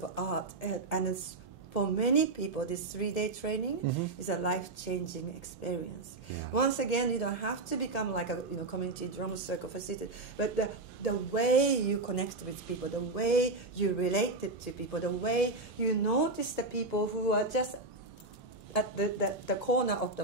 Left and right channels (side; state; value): left; quieter; 3.1 dB